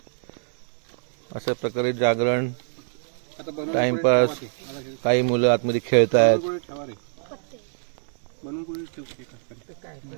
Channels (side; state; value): left; silent; digital silence